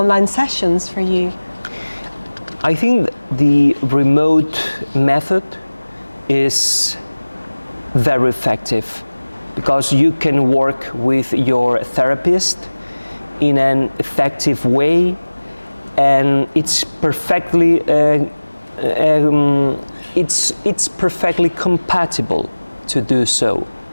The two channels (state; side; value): inverted; both; correlation -1.00